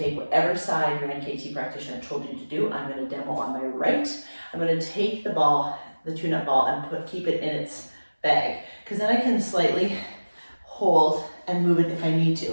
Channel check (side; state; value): both; inverted; correlation -1.00